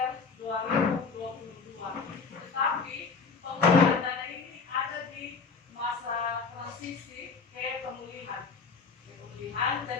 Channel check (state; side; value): quieter; right; 5.0 dB